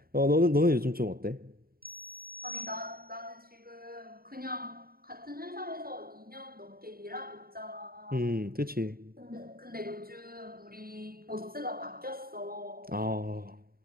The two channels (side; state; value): left; late; 0.43 ms